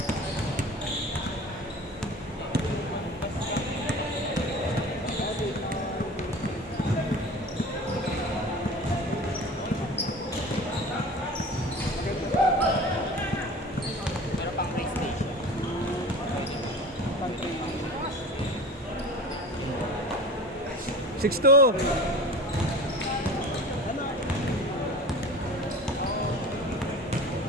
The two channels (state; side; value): normal; both; correlation 0.37